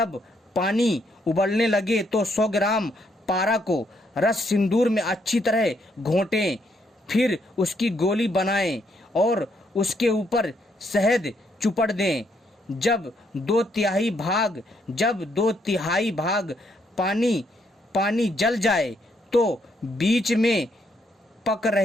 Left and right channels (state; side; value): normal; both; correlation 0.74